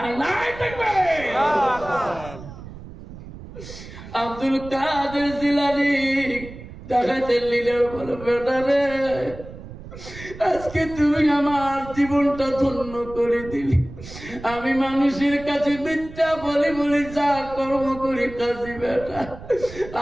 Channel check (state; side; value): noise; right; rumble, 14 dB below the sound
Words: আব্দুল কাদের জিলানী ডাকাতের লিডার বলে, বেটারে আজকে তুমি আমার জীবনটা ধন্য করে দিলি। আমি মানুষের কাছে মিথ্যা বলি বলি যা কর্ম করি কাজী বেটা,